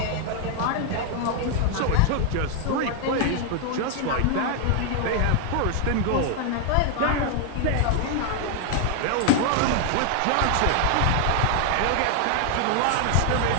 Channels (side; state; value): both; different; correlation 0.00